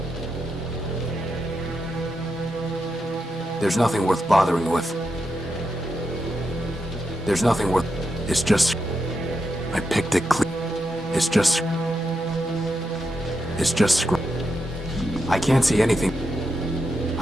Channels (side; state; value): both; normal; correlation 0.85